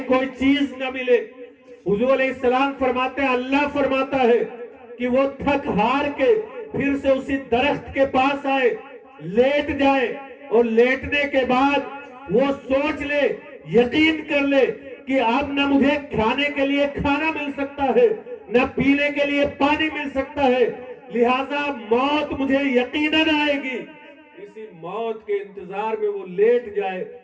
کوئی چیز نہ ملے۔ حضور علیہ السلام فرماتے ہیں اللہ فرماتا ہے کہ وہ تھک ہار کے پھر سے اسی درخت کے پاس آئے، لیٹ جائے، اور لیٹنے کے بعد وہ سوچ لے، یقین کر لے کہ اب نہ مجھے کھانے کے لیے کھانا مل سکتا ہے، نہ پینے کے لیے پانی مل سکتا ہے، لہذا موت مجھے یقیناً آئے گی۔ اسی موت کے انتظار میں وہ لیٹ جائے۔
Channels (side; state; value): both; identical; correlation 1.00